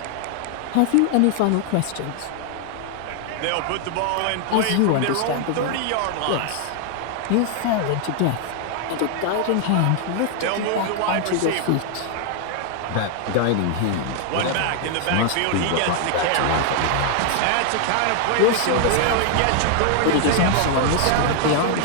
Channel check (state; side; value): different; both; correlation 0.00